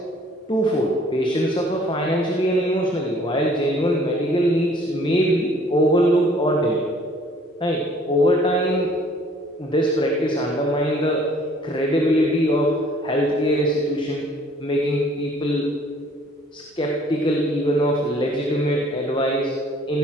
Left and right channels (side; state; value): both; normal; correlation 0.57